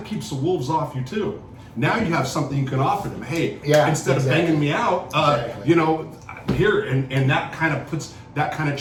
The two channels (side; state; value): both; identical; correlation 1.00